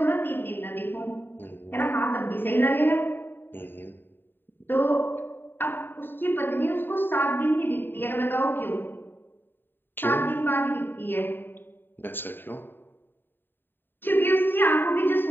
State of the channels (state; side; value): late; right; 0.095 ms